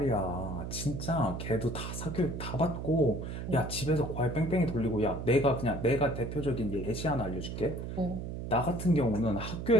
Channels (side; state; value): right; noise; hum, 6 dB below the sound